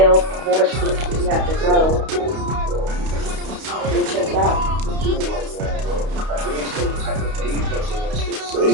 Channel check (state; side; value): late; left; 31 ms